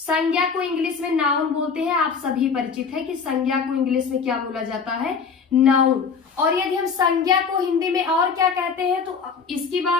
को इंग्लिश में नाउन बोलते हैं। आप सभी परिचित है कि संज्ञा को इंग्लिश में क्या बोला जाता है, नाउन। और यदि हम संज्ञा को हिंदी में और क्या कहते हैं तो इसकी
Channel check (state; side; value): quieter; right; 5.7 dB